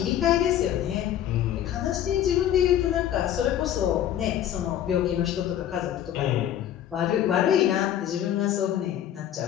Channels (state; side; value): quieter; right; 11.0 dB